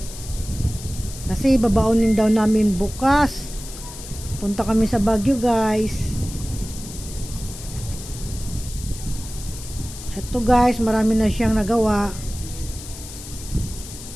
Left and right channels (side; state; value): left; noise; hiss, 13 dB below the sound